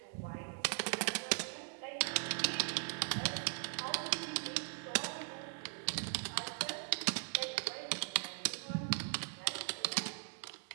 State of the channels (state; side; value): silent; left; 51 dB below the other